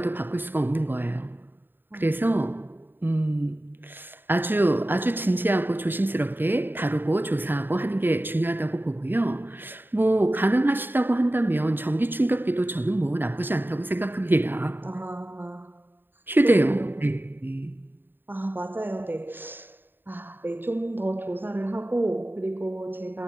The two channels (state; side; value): late; left; 0.096 ms